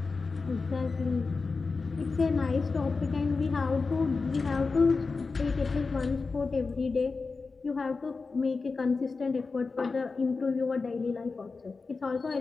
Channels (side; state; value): right; quieter; 4.3 dB